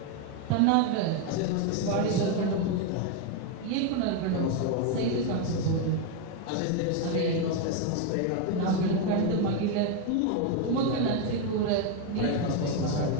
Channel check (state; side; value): different; both; correlation 0.02